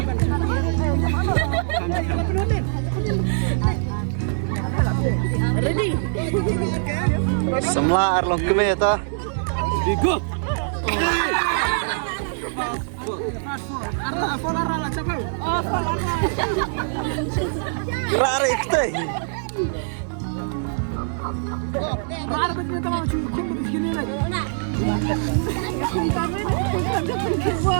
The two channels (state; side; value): silent; left; digital silence